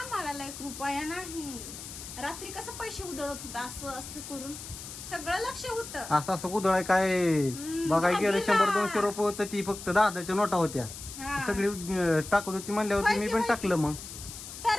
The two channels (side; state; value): left; noise; hiss, 11 dB below the sound